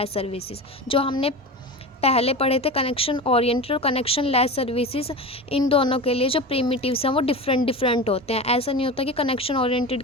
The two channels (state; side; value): normal; both; correlation 0.28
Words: services. जो हमने पहले पढ़े थे कनेक्शन ओरिएंटेड और कनेक्शन लेस सर्विसेज, इन दोनों के लिए जो प्रीमिटिव्स हैं वो डिफरेंट होते हैं। ऐसा नहीं होता कि कनेक्शन ओरिएंटेड